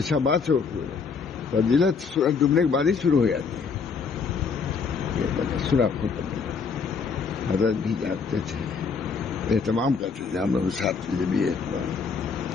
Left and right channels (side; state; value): right; quieter; 5.4 dB